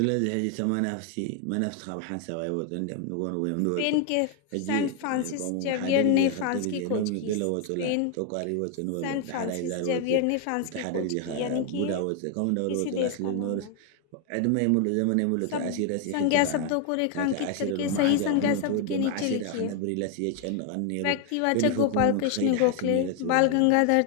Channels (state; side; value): different; both; correlation 0.00